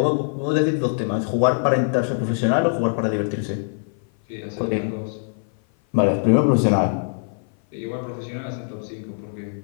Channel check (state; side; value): silent; right; 56 dB below the other